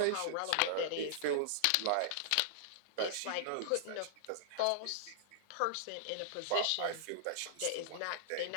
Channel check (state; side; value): different; both; correlation -0.01